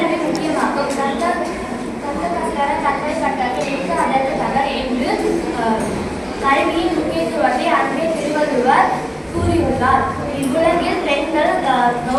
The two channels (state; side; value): identical; both; correlation 1.00